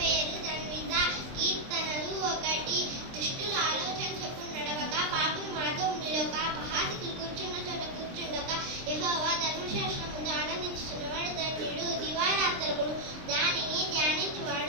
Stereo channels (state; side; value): late; left; 23 ms